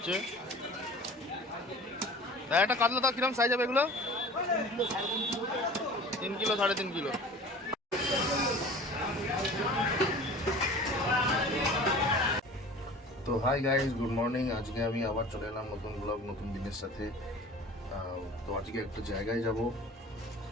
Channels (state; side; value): normal; both; correlation 0.42